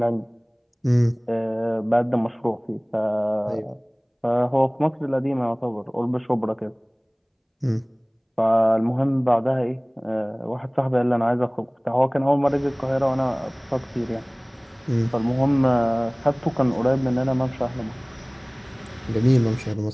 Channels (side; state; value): both; identical; correlation 1.00